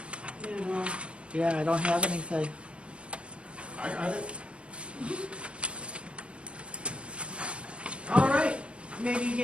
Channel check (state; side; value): late; left; 0.058 ms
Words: yeah, I don't have anything. I got it. All right, maybe you